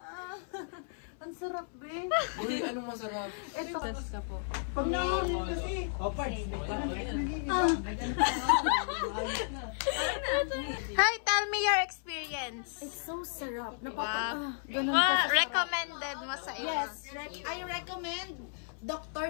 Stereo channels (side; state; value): right; silent; 56 dB below the other